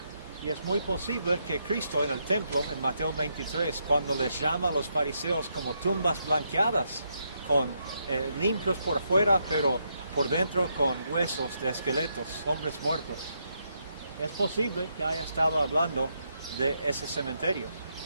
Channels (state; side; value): inverted; both; correlation -0.79